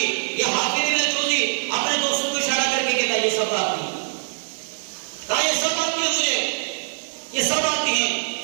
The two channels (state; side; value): silent; left; digital silence